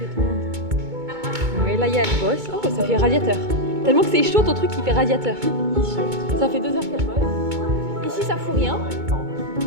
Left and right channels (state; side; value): late; left; 2.2 ms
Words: tout le monde. Oui, là, il y a le boss. Oh, ça fait radiateur. Tellement que c'est chaud, ton truc, il fait radiateur. Ça fait 2 heures qu'elle bosse. Ici, ça fout rien.